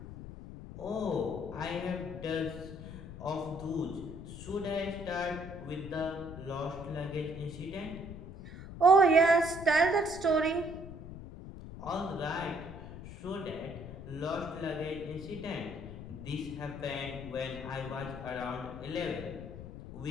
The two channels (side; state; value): left; noise; rumble, 11 dB below the sound